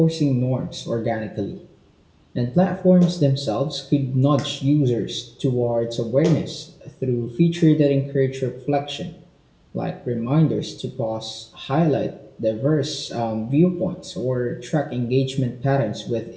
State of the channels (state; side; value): identical; both; correlation 1.00